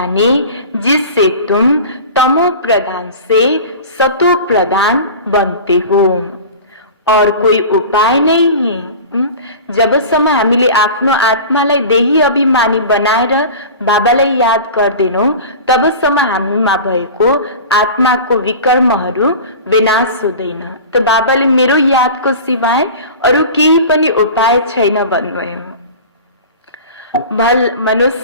जिससे तुम तमो प्रधान से सतो प्रधान बनते हो। और कोई उपाय नहीं है। जबसम्म हामीले आफ्नो आत्मालाई देही अभिमानी बनाएर बाबालाई याद गर्दैनौं, तबसम्म हामीमा भएको आत्माको विकर्महरू विनाश हुँदैन। त बाबाले मेरो यादको सिवाय अरू केही पनि उपाय छैन भन्नुभयो। भल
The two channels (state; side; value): inverted; both; correlation -0.36